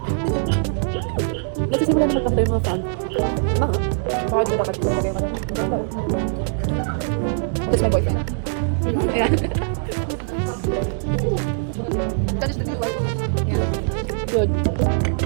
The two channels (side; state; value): left; silent; 61 dB below the other